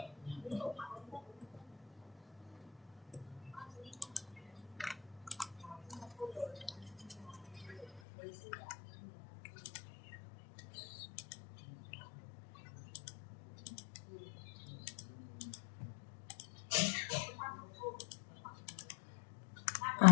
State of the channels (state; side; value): drops out; right; at 8.0 s